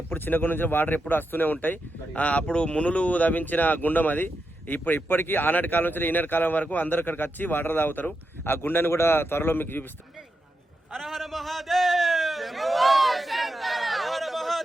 ఎప్పుడు చిన్న గుండం నుంచి వాటర్ ఎప్పుడు వస్తూనే ఉంటాయి. అప్పుడు మునులు తవ్వించిన గుండం అది. ఇప్పటికీ ఆనాటి కాలం నుంచి ఈనాటి కాలం వరకు అందరు ఇక్కడికి వచ్చి వాటర్ తాగుతారు. ఆ గుండాన్ని కూడా త్వరలో మీకు చూపిస్తాం. హర హర మహాదేవ్, హర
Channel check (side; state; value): both; normal; correlation 0.87